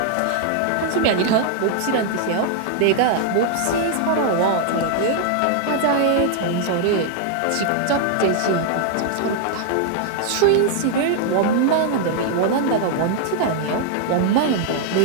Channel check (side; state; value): both; different; correlation 0.00